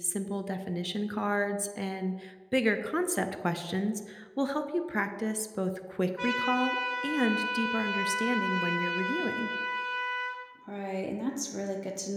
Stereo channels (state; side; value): identical; both; correlation 1.00